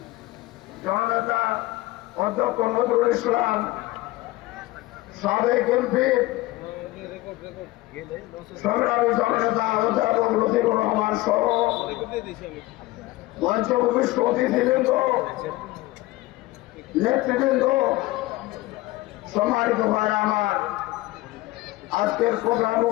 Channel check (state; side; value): quieter; right; 18.6 dB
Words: জননেতা অধ্যক্ষ নজরুল ইসলাম, সাবেক এমপি সংগ্রামী জননেতা অধ্যাপক লতিফুর রহমান সহ মঞ্চ উপবিষ্ট অতিথিবৃন্দ, নেতৃবৃন্দ, সম্মানিত ভাইরা আমার, আজকের প্রোগ্রাম